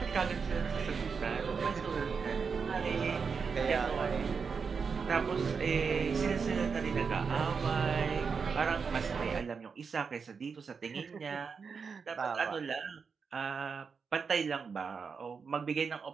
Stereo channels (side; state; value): left; quieter; 5.6 dB